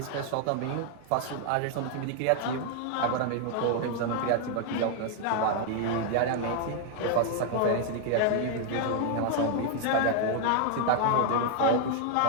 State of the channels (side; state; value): both; different; correlation 0.00